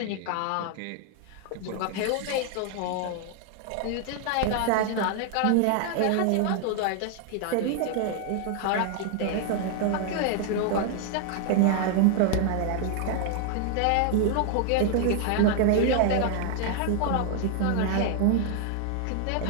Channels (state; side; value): different; both; correlation 0.00